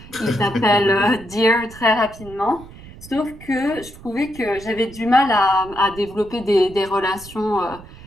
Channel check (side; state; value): right; noise; rumble, 18 dB below the sound